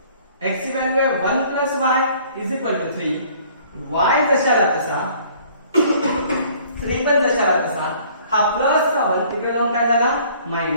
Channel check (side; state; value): both; inverted; correlation -0.55